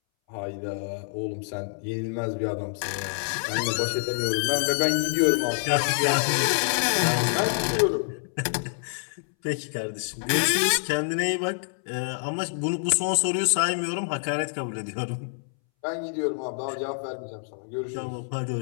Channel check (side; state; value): right; silent; 60 dB below the other